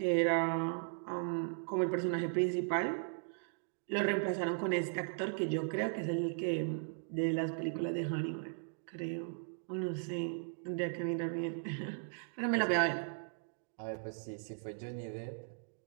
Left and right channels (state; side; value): silent; left; digital silence